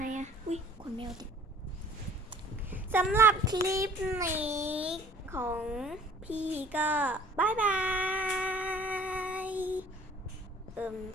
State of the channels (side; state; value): both; normal; correlation 0.50